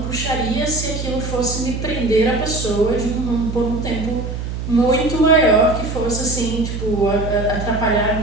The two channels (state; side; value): noise; right; hum, 5 dB below the sound